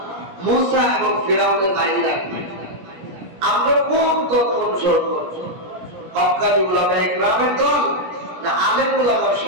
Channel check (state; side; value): late; left; 17 ms